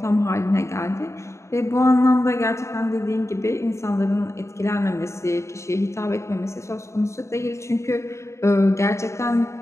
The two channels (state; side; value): late; right; 0.14 ms